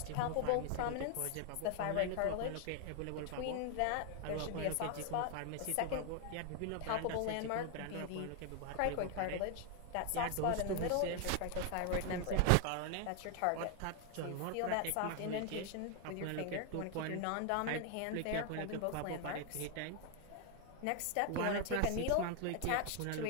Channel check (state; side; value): different; both; correlation 0.00